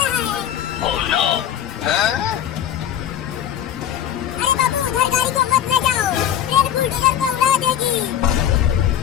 रहा है। अरे बाबू, उधर गाड़ी को मत ले जाओ, ट्रेन बुलडोजर को उड़ा देगी।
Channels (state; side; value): quieter; right; 10.4 dB